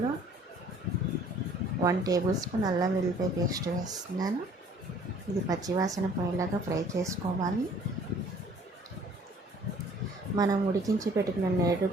1 టేబుల్ స్పూన్ అల్లం వెల్లిపాయ పేస్ట్ వేస్తున్నాను. ఇది పచ్చివాసన పోయేలాగా ఫ్రై చేసుకోవాలి. మనం ఉడికించి పెట్టుకున్న నేడు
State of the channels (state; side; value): normal; both; correlation 0.55